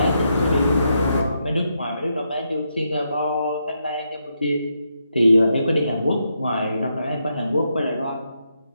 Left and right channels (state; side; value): inverted; both; correlation -0.81